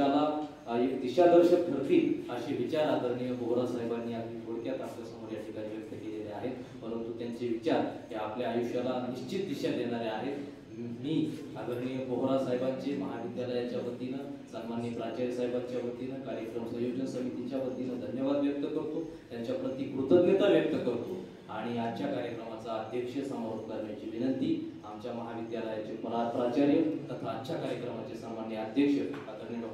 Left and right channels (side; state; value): both; identical; correlation 1.00